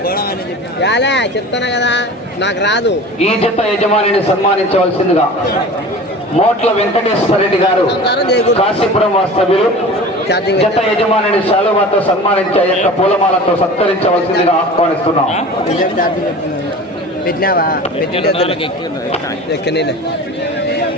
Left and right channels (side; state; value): both; normal; correlation 0.37